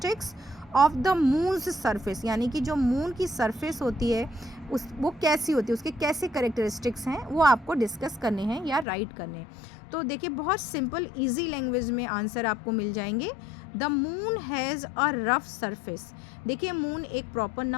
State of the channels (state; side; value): drops out; right; at 8.8 s